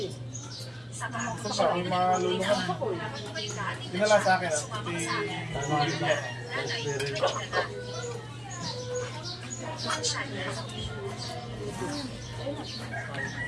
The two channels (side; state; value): both; identical; correlation 1.00